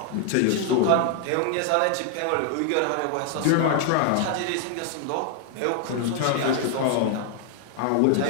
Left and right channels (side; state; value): both; different; correlation 0.00